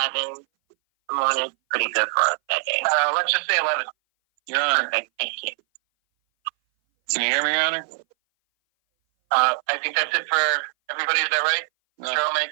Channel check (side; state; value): left; silent; 60 dB below the other